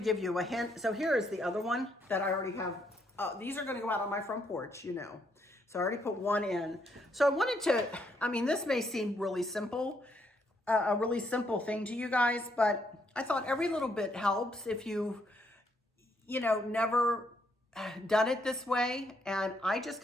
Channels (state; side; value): normal; both; correlation 0.74